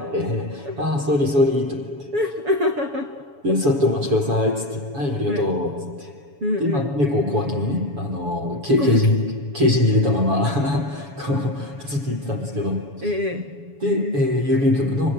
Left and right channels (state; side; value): late; left; 7.1 ms